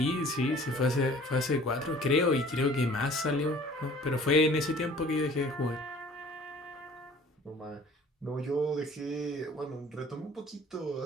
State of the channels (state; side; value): normal; both; correlation 0.50